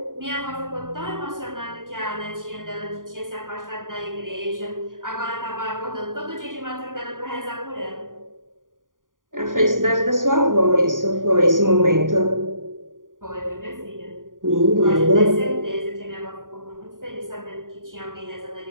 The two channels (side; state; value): left; late; 0.89 ms